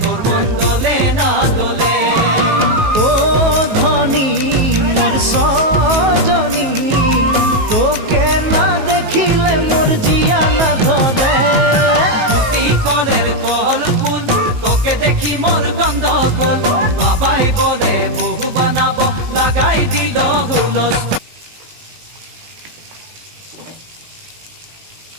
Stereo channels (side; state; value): left; late; 19 ms